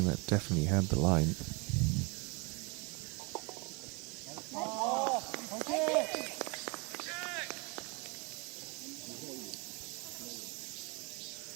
that definitely had the line.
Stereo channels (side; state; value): left; quieter; 30.4 dB